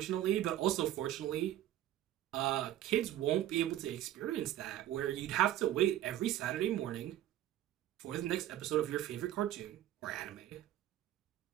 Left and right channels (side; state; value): left; quieter; 12.9 dB